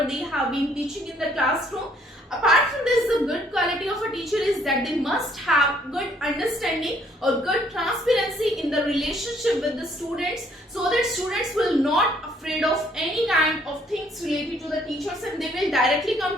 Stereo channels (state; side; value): normal; both; correlation 0.65